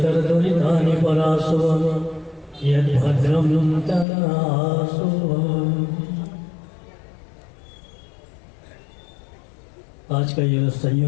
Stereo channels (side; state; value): right; drops out; at 4.0 s